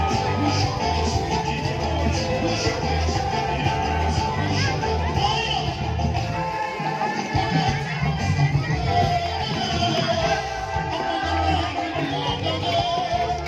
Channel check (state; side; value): identical; both; correlation 1.00